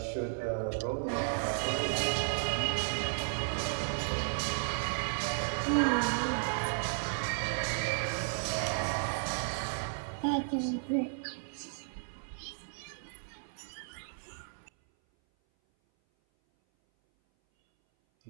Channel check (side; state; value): left; silent; 55 dB below the other